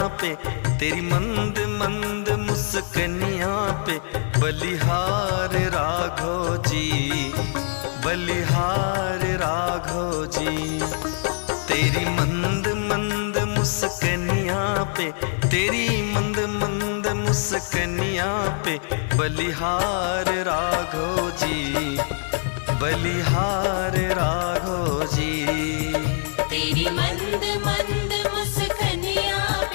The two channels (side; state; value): right; silent; 63 dB below the other